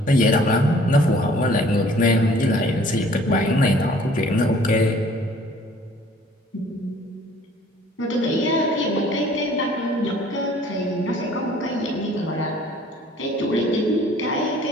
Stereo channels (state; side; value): normal; both; correlation 0.54